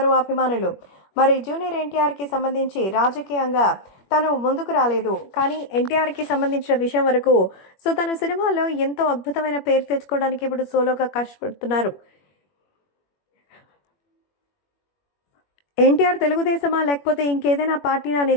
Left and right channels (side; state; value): right; late; 21 ms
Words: అభిమానులు. మరి జూనియర్ ఎన్టీఆర్కి సంబంధించి రాజకీయంగా తను ముందుకు రాలేదు, కానీ ఎన్టీఆర్కి సంబంధించిన విషయం వరకు తను సినిమాలో ఎంతో అద్భుతమైన పేరు తెచ్చుకోవడానికి ఇప్పుడు సోలోగా కష్టపడుతున్నారు. ఎన్టీఆర్ తెలుగుదేశమా లేకపోతే ఇంకేదైనా పార్టీనా